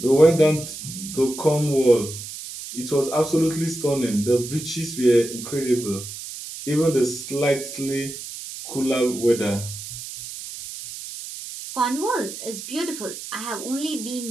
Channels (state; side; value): noise; right; hiss, 10 dB below the sound